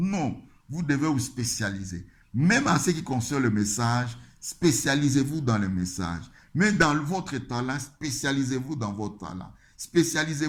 vous devez vous spécialiser. Même en ce qui concerne le message, spécialisez-vous dans le message. Mais dans votre talent, spécialisez-vous dans votre talent.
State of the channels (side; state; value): both; identical; correlation 1.00